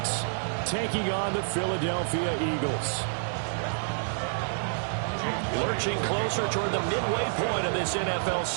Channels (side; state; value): left; silent; digital silence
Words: taking on the Philadelphia Eagles. Lurching closer toward the midway point of this NFL